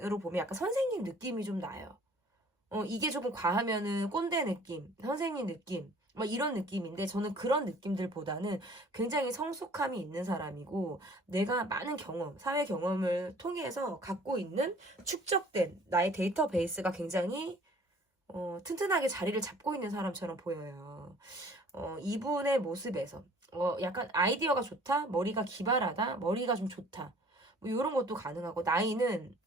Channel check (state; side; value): normal; both; correlation 0.52